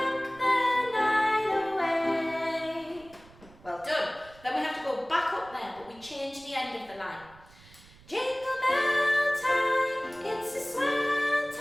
the night away. Well done. Then we have to go back up there, but we change the end of the line. Jingle bell time, it's a swell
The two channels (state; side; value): noise; right; rumble, 24 dB below the sound